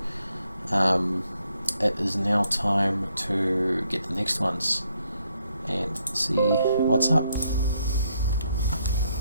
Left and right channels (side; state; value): both; inverted; correlation -0.74